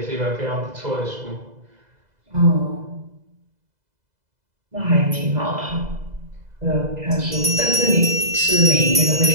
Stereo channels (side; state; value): left; late; 2.0 ms